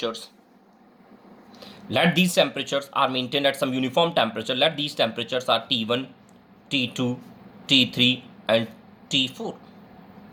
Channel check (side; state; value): both; identical; correlation 1.00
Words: Let these temperatures are maintained at some uniform temperature. Let these temperatures are T1, T2, T3 and T4.